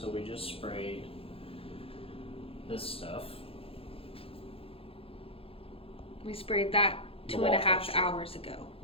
we just sprayed this stuff. We sprayed that The 2.5 wall texture. hours ago.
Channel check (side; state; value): right; late; 0.27 ms